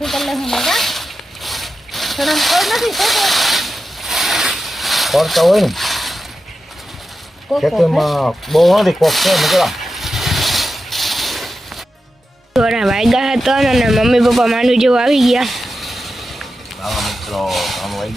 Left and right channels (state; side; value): normal; both; correlation 0.91